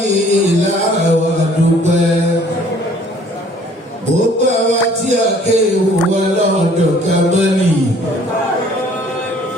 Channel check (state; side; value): normal; both; correlation 0.56